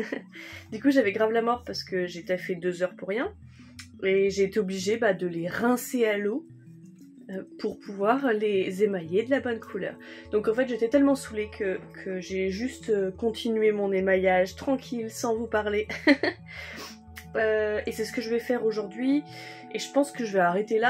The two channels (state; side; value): identical; both; correlation 1.00